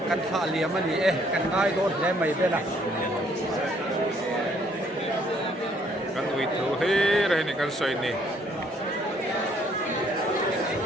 kan tha lia mani kan ngai don he mai bela kan ui thu he re ni kan soi ni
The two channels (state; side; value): normal; both; correlation 0.65